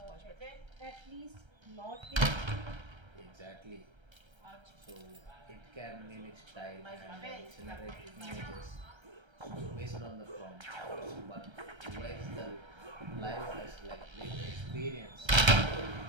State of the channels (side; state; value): left; late; 1.3 ms